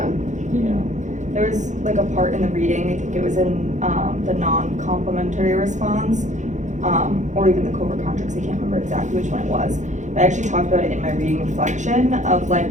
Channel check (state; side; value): late; left; 0.35 ms